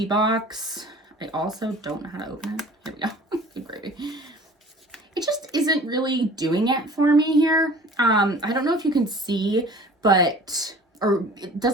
box. I also don't know how to open it. Here we go. Good gravy. It just isn't really doing it for me here. I don't know if you can see, but, or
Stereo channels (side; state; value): both; normal; correlation 0.46